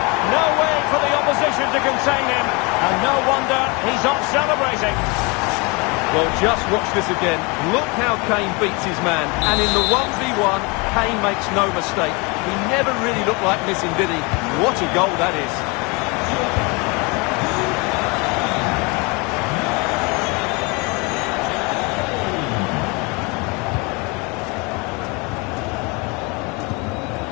No way for the opposition to contain him. And no wonder he's off celebrating. Well, just watch this again. Look how Kane beats his man. And in the 1v1, Kane makes no mistake. He never really looked like missing, did he? What a goal that is.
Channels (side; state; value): right; quieter; 28.7 dB